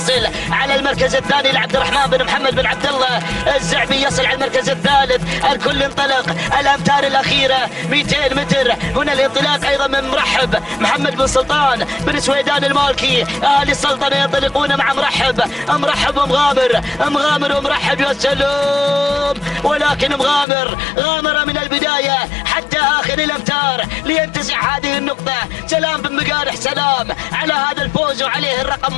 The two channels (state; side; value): drops out; right; at 20.5 s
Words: على المركز الثاني لعبد الرحمن بن محمد بن عبد الله الزعبي يصل على المركز الثالث. الكل انطلق، الأمتار الأخيرة 200 متر، هنا الانطلاق أيضا من مرحب محمد بن سلطان بن سويدان المالكي. أهل السلطنة ينطلقون مع مرحب ومغامر ومرحب، يا سلام، ولكن مغامر غامر من البداية حتى آخر الأمتار لينتزع هذه النقطة. سلام بن مقارح، سلام على هذا الفوز وعليه